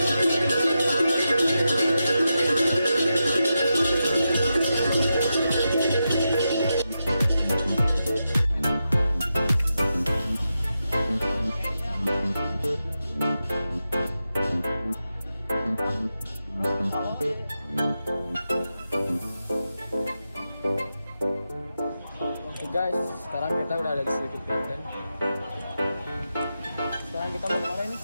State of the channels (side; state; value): both; inverted; correlation -0.89